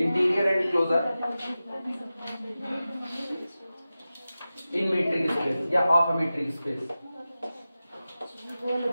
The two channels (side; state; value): both; inverted; correlation -0.95